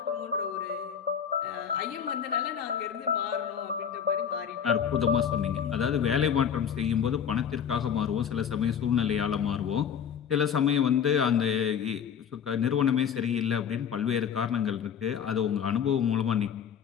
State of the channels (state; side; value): quieter; right; 7.9 dB